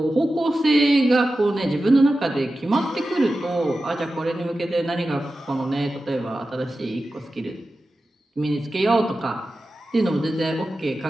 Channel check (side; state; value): both; normal; correlation 0.93